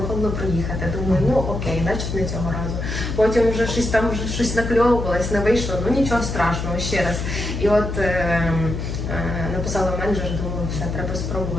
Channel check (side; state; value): left; noise; hum, 4 dB below the sound